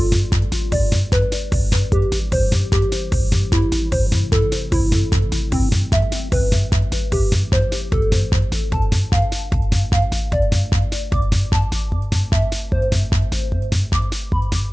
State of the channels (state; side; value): normal; both; correlation 0.97